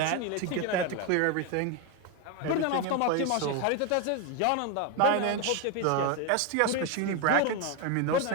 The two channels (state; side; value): different; both; correlation 0.02